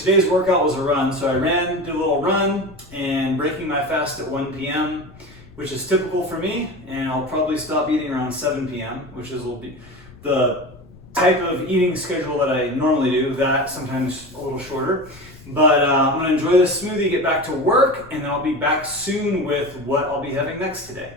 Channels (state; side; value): noise; left; rumble, 22 dB below the sound